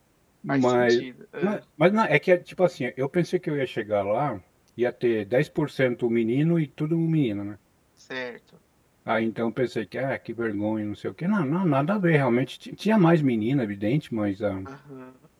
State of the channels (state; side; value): identical; both; correlation 1.00